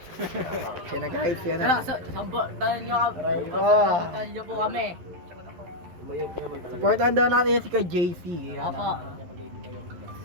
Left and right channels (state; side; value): late; left; 12 ms